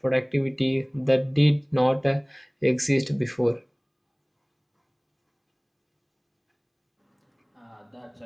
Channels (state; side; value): identical; both; correlation 1.00